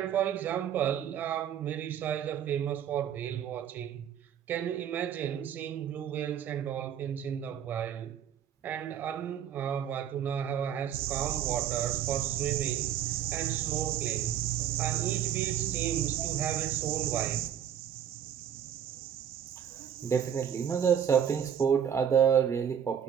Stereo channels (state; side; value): quieter; left; 9.3 dB